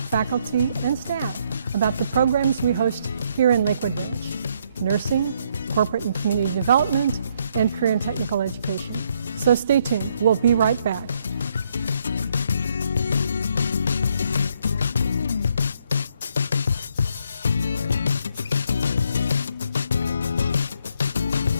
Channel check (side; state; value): both; inverted; correlation -0.72